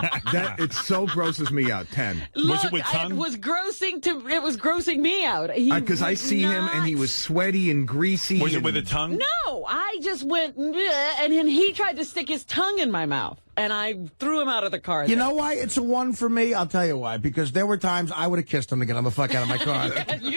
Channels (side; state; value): both; inverted; correlation -1.00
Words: it so grosses me out. 10. Look, it with tongue? It was grossing me out. Because I see him and he was sweaty and greasy. Was it with a tongue? No, I just went, and then he tried to stick his tongue in my mouth, and I threw him out of the car. You know why it's a 1 for me? I'll tell you why. Because there were times I would have kissed him to get him the fuck out of my car.